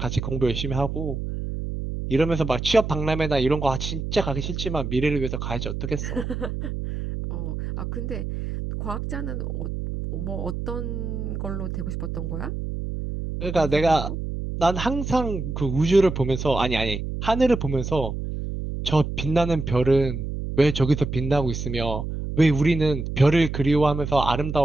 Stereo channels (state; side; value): noise; right; hum, 5 dB below the sound